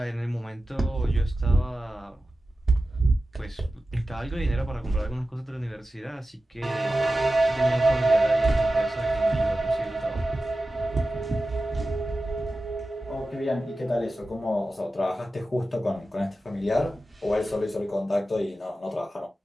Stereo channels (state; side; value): normal; both; correlation 0.94